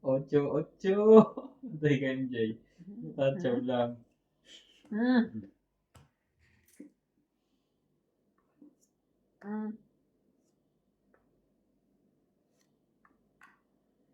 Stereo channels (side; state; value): both; identical; correlation 1.00